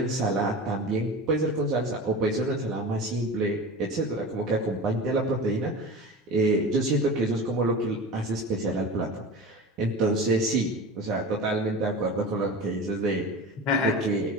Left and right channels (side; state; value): both; normal; correlation 0.32